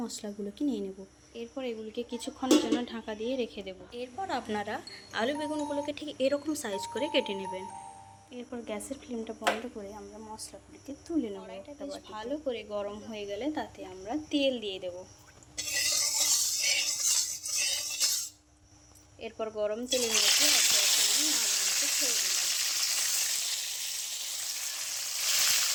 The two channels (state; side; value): identical; both; correlation 1.00